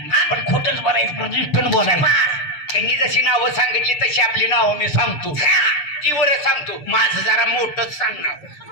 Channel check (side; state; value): right; late; 6.8 ms